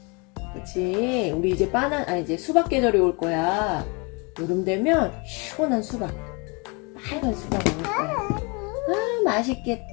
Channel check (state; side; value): quieter; right; 30.9 dB